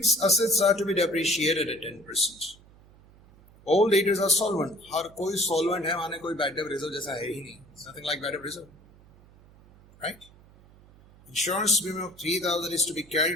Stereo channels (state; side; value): noise; right; hum, 26 dB below the sound